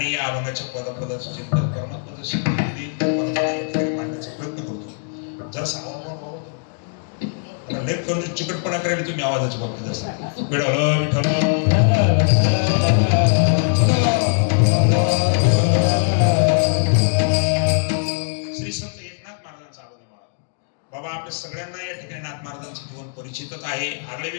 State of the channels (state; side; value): silent; right; 65 dB below the other